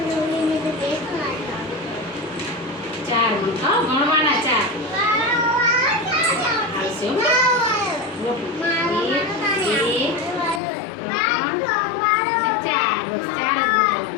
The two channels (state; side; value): drops out; right; at 10.6 s